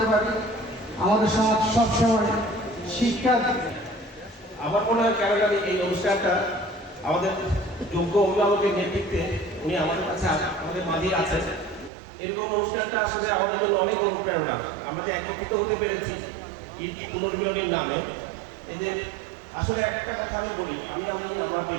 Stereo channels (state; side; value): drops out; left; at 11.9 s